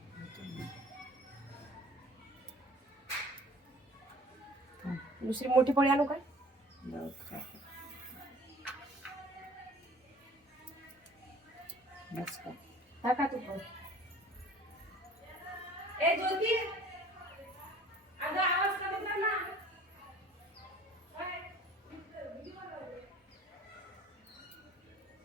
दुसरी मोठी पोळी आणू काय? टाका तू पण. ए ज्योती, अगं आवाज कमी कर ना.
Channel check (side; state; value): both; normal; correlation 0.49